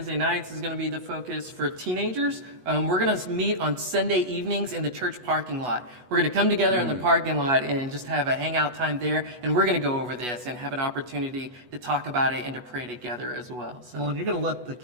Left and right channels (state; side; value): late; left; 8.2 ms